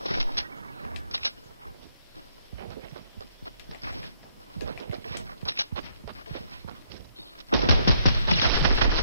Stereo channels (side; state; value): both; inverted; correlation -0.68